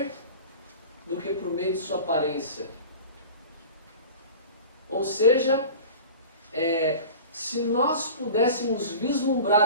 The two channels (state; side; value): inverted; both; correlation -0.37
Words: do que por meio de sua aparência. Ou seja, se nós pudéssemos